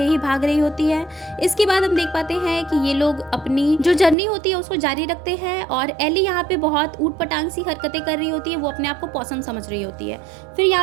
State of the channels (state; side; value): drops out; left; at 4.2 s